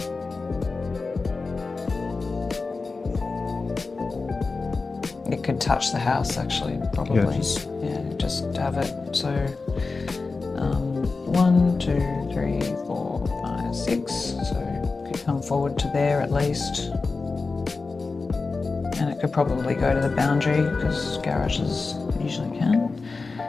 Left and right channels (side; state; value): right; quieter; 4.0 dB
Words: It could touch the house actually, probably. Just have it. So 1, 2, 3, 4, 5, 6. So it could come forward to there at least. And it could probably go to the boundary because garages usually can.